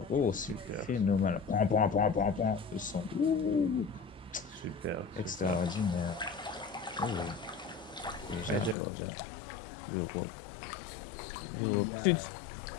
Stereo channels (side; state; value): right; drops out; at 8.8 s